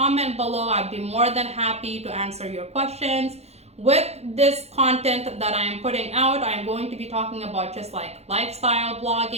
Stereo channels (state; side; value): late; left; 0.31 ms